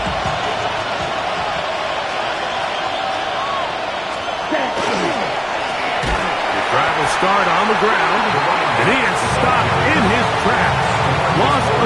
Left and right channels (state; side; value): identical; both; correlation 1.00